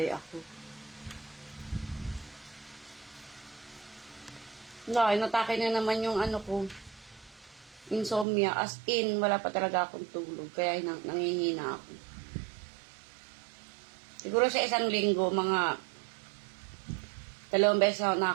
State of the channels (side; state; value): left; drops out; at 8.2 s